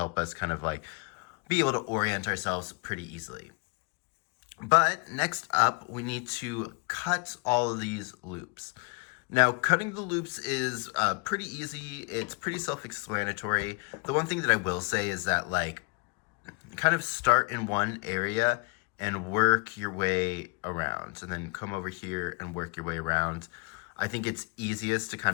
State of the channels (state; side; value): quieter; right; 31.3 dB